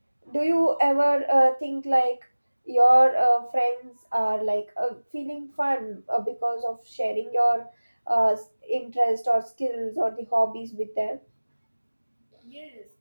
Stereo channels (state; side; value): inverted; both; correlation -1.00